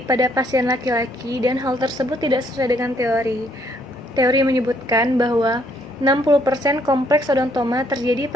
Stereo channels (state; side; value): normal; both; correlation 0.68